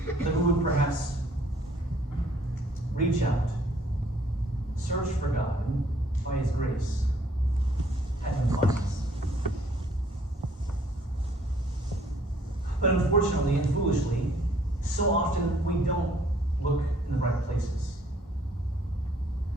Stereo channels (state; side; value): normal; both; correlation 0.61